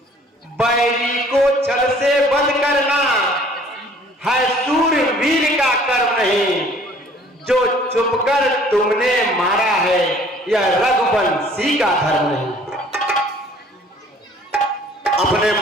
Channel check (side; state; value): both; normal; correlation 0.55